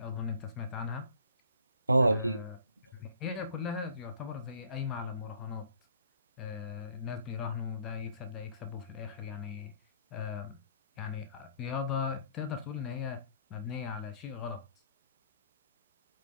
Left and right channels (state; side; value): inverted; both; correlation -0.56